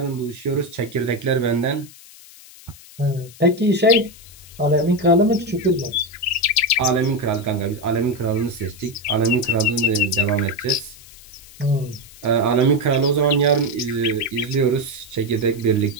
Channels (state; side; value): noise; left; hiss, 21 dB below the sound